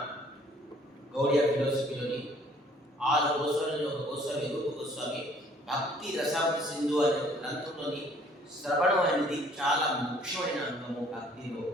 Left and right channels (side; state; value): both; normal; correlation 0.58